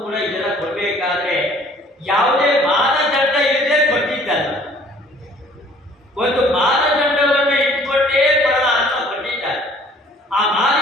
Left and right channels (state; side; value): normal; both; correlation 0.56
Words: ಕೂಡ ಇದೆಲ್ಲ ಕೊಡಬೇಕಾದ್ರೆ ಯಾವುದೇ ಮಾನದಂಡ ಇಲ್ಲದೆ ಕೊಟ್ಟಿದ್ದಲ್ಲ. ಒಂದು ಮಾನದಂಡವನ್ನು ಇಟ್ಕೊಂಡೇ ಪರಮಾತ್ಮ ಕೊಟ್ಟಿದ್ದಾರೆ. ಆ